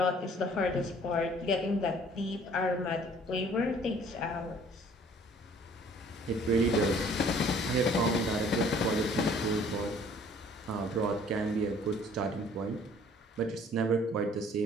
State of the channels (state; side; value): normal; both; correlation 0.55